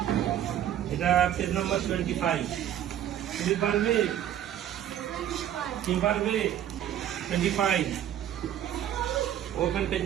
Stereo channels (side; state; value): left; quieter; 11.0 dB